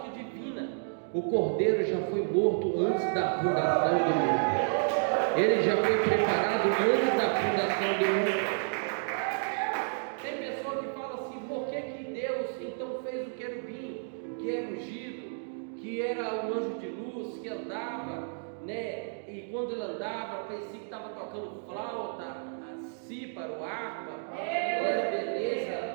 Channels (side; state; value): left; silent; digital silence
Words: divina, o Cordeiro já foi morto antes da fundação do mundo. Ele já foi preparado antes da fundação do mundo. Tem pessoa que fala assim: por que Deus então fez o querubim, que era ungido, que era um anjo de luz, que andava, né? E quando ele andava, parecia que estava tocando flauta, cíparo, harpa, era beleza,